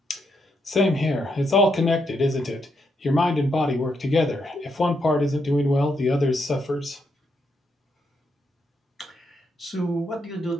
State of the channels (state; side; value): normal; both; correlation 0.79